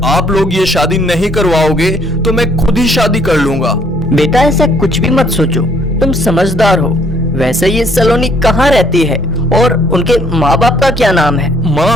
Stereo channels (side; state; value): both; normal; correlation 0.64